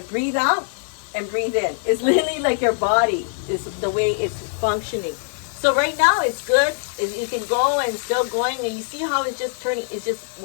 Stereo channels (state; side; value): silent; right; digital silence